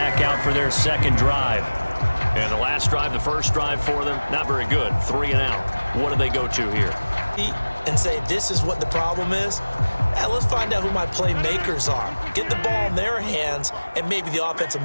out for their second drive. And the last drive, the first drive for them, not very good. 3 and out. What do they go to here? And say, this is what the problem is? Let's find out who my playmakers are. Get the ball in their hands, and maybe the offense will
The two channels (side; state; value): both; inverted; correlation -1.00